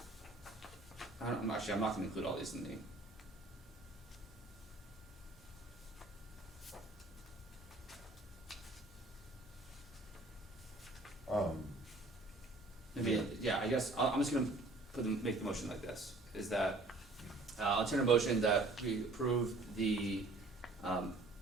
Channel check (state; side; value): quieter; left; 3.0 dB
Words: I'm not gonna include all these in the. Maybe, yeah, I guess, I'm just gonna make the motion like this, is that, I'll enter a motion that we approve the,